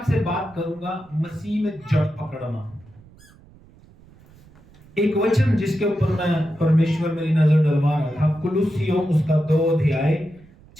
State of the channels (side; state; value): right; noise; rumble, 26 dB below the sound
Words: बात करूंगा मसीह में जड़ पकड़ना। एक वचन जिसके ऊपर मैं परमेश्वर मेरी नजर डलवा रहा था, कुलुस्सियों उसका 2 अध्याय